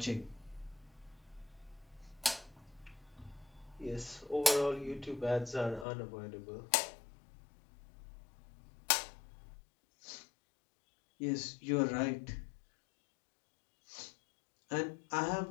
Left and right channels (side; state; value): right; drops out; at 5.9 s